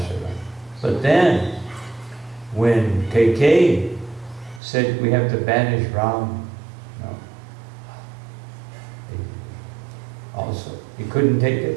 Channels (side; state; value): left; drops out; at 4.6 s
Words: But then, when Kaikeyi said we have to banish Ram, also, he couldn't take